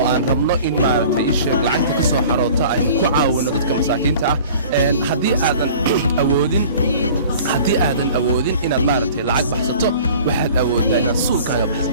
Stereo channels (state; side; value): inverted; both; correlation -0.45